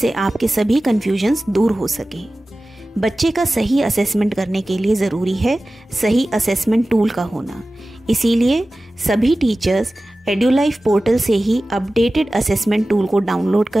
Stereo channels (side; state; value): both; normal; correlation 0.96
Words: आपके सभी कन्फ्यूजन्स दूर हो सकें। बच्चे का सही असेसमेंट करने के लिए ज़रूरी है सही असेसमेंट टूल का होना। इसीलिए सभी टीचर्स एड्यूलाइफ पोर्टल से ही अपडेटेड असेसमेंट टूल को डाउनलोड